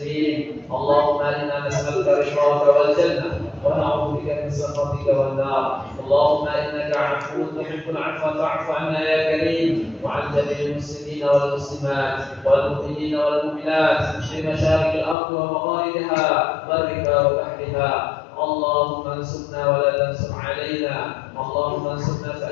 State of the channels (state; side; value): drops out; right; at 15.2 s